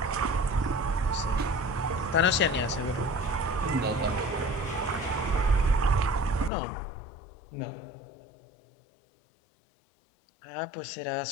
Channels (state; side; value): drops out; right; at 6.5 s